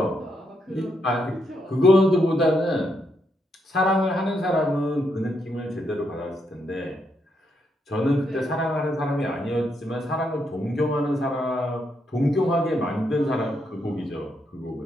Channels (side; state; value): both; normal; correlation 0.79